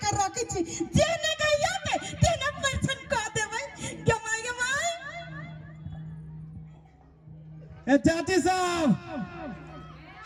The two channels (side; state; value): both; identical; correlation 1.00